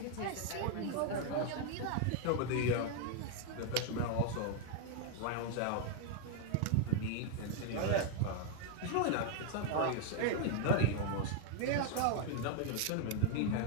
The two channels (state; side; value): different; both; correlation 0.00